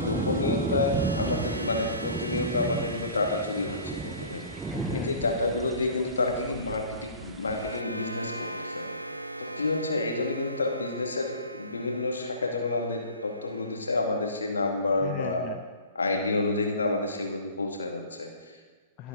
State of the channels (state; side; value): inverted; both; correlation -0.44